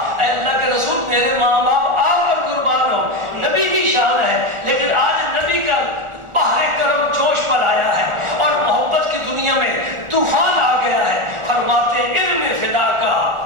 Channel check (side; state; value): left; late; 1.4 ms